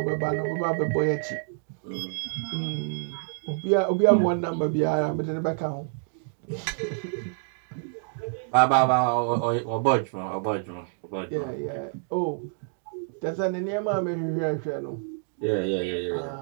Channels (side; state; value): left; silent; 60 dB below the other